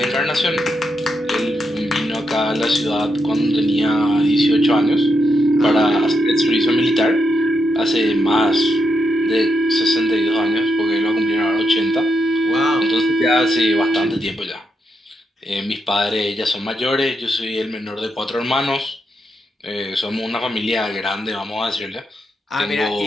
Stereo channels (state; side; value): normal; both; correlation 0.82